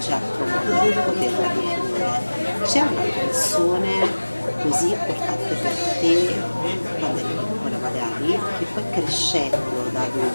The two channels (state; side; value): inverted; both; correlation -1.00